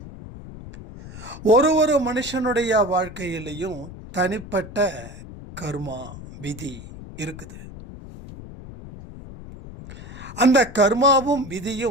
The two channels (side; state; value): left; noise; rumble, 14 dB below the sound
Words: ஒரு மனுஷனுடைய வாழ்க்கையிலையும் தனிப்பட்ட கர்மா விதி இருக்குது. அந்த கர்மாவும்